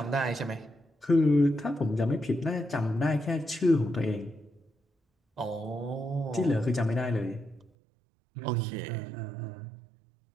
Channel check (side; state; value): left; drops out; at 7.7 s